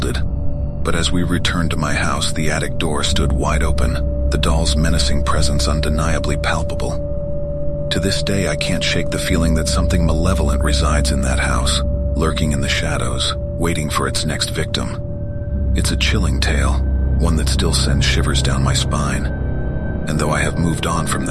But as we returned to my house, the attic door stood wide open, the doll's menacing presence undeniably palpable. To this day, I can't shake the feeling that something malevolent resides in that house, lurking in the shadows, waiting for its next victim. It's a chilling tale, one that still sends shivers down my spine. And though I have moved on from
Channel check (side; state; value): both; identical; correlation 1.00